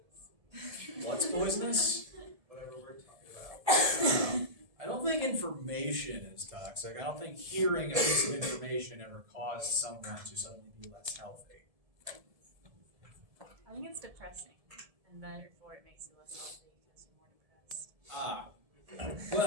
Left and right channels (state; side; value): late; left; 1.7 ms